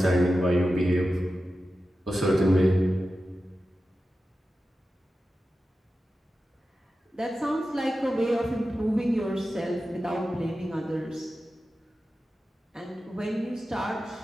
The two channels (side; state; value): both; normal; correlation 0.93